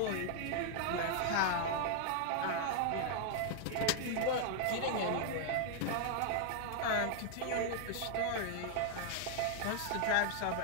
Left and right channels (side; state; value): both; different; correlation 0.00